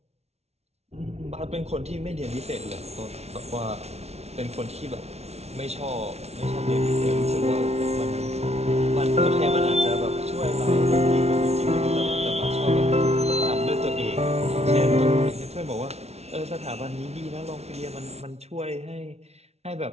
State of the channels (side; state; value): left; late; 0.31 ms